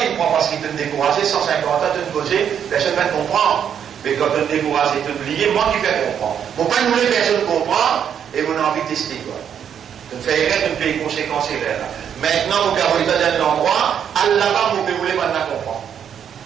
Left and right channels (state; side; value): quieter; left; 8.5 dB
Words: te prends parce qu'il te découragé, 150 ans, tu te poser, personne ne va te comprendre. Mais quand tu te décourages et tu oublies, moi qui fais comprendre. Pour pas nous les personnes comprendre, et on a envie de tester quoi. Tu me fais erreur, tu me fais les conséquences erreurs là. Maintenant, mon père, vous êtes dans l'endroit, Allah va, mon père, vous voulez maintenant comprendre.